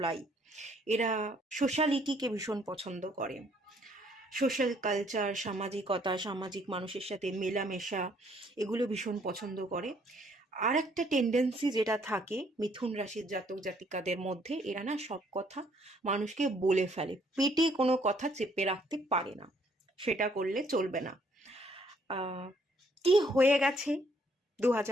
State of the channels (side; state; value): both; normal; correlation 0.65